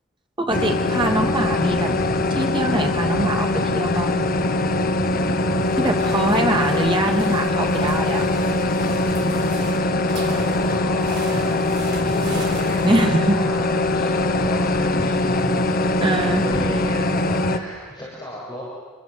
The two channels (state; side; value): normal; both; correlation 0.46